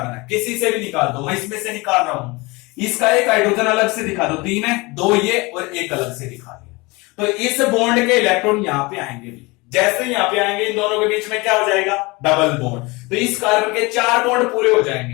है, किसी से भी निकाल दो, मैं इसमें से निकाल रहा हूं। इसका एक हाइड्रोजन अलग से दिखा दो, 3 है, 2 ये और एक अलग से दिखा दिया। तो इस बॉन्ड के इलेक्ट्रॉन यहां पे आएंगे भी, जैसे यहां पे आएंगे इन दोनों के बीच में क्या हो जाएगा, डबल बॉन्ड। तो इस कार्बन के 4 बॉन्ड पूरे हो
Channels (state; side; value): quieter; right; 24.8 dB